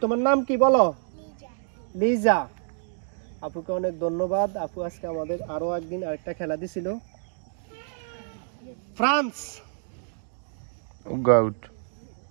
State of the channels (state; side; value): silent; left; digital silence